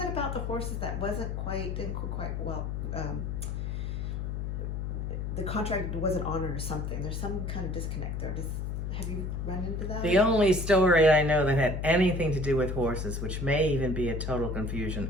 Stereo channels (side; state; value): left; noise; hum, 3 dB below the sound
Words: about the horses that didn't quite well. The contract wasn't honored or something. There's some kind of disconnect there. have you run into that? The only story I know that had anything to do with horses, which may even be a total